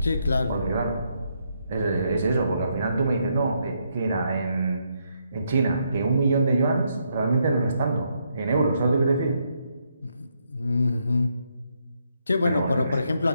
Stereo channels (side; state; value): both; inverted; correlation -0.77